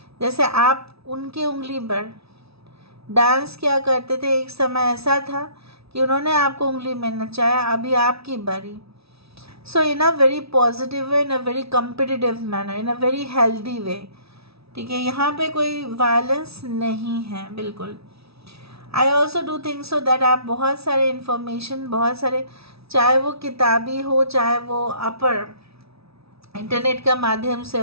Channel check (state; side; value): late; left; 0.77 ms